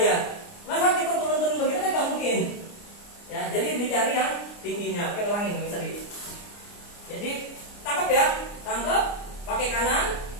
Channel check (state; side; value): late; right; 29 ms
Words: Masa kita turun-turun begitu kan nggak mungkin. Ya, jadi dicari yang tingginya. Oke, ulangin Bang Seri. Jadi tangkap ya, tangkap pakai kanan.